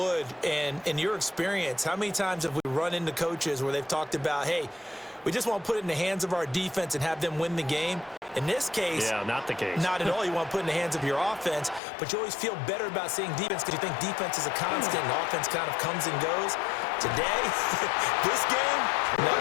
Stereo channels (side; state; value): right; drops out; at 11.8 s